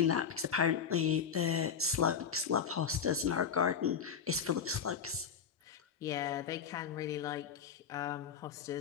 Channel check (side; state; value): right; quieter; 7.0 dB